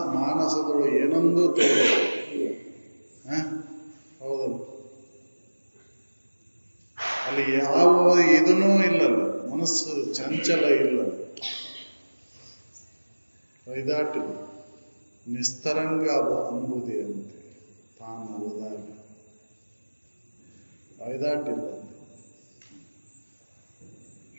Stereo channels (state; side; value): inverted; both; correlation -1.00